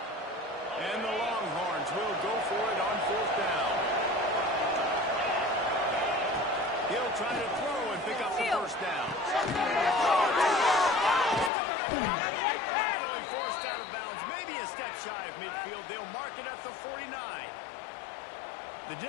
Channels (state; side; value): drops out; right; at 11.5 s